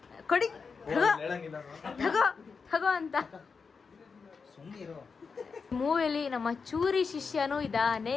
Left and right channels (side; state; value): right; quieter; 5.2 dB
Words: ಕೊಡಿ ತಗೋ ಅಂತ. ಮೂವಿಲಿ ನಮ್ಮ ಚೂರಿ ಶಿಷ್ಯನೂ ಇದಾನೆ.